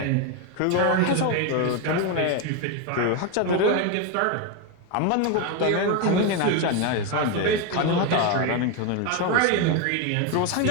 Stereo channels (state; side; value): different; both; correlation 0.02